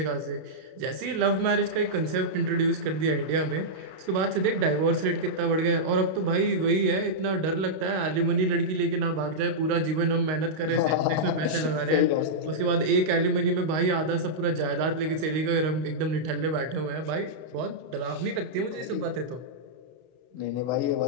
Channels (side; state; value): left; late; 32 ms